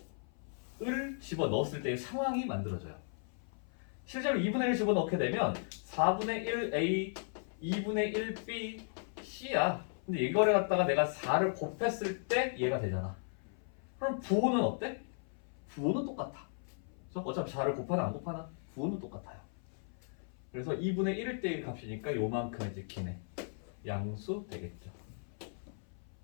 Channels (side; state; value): right; silent; 54 dB below the other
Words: 을 집어넣었을 때의 상황이 만들어져요. 실제로 2분의 1 집어넣게 되면 4분의 1a, 2분의 1b, c야. 근데 이거를 갖다가 내가 4를 곱했을 때 얘가 되잖아. 그럼 부호는 어때? 부호는 똑같아. 그래서 어차피 4를 곱하나 안 곱하나? 부호는 똑같아요. 그래서 2분의 1일 때의 값이니까 요만큼 이제 기네. 양수 되겠죠.